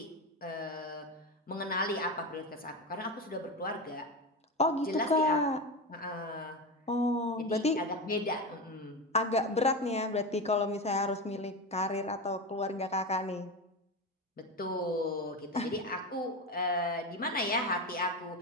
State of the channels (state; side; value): normal; both; correlation 0.20